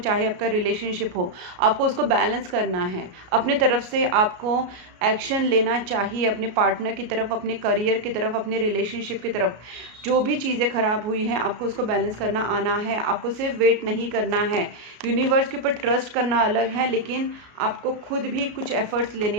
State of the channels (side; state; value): left; late; 33 ms